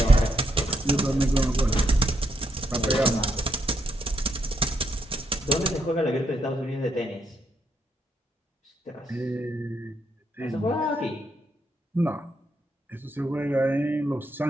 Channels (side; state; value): both; normal; correlation 0.77